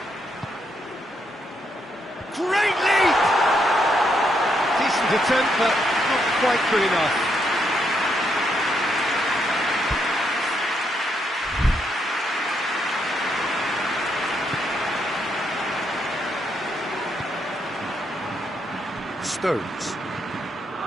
Great leap! Decent attempt, but not quite good enough.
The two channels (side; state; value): both; normal; correlation 0.77